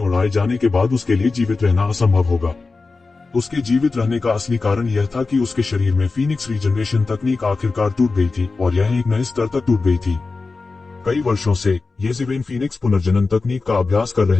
जाने के बाद उसके लिए जीवित रहना असंभव होगा। उसके जीवित रहने का असली कारण यह था कि उसके शरीर में फीनिक्स रीजनरेशन तकनीक आखिरकार टूट गई थी, और यह एक नए स्तर तक टूट गई थी। कई वर्षों से येज़ेबेल फीनिक्स पुनर्जनन तकनीक का अभ्यास कर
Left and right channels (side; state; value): right; quieter; 4.0 dB